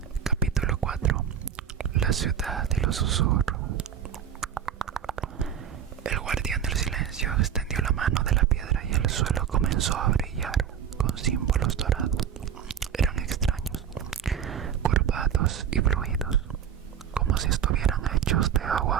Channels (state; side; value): quieter; left; 8.5 dB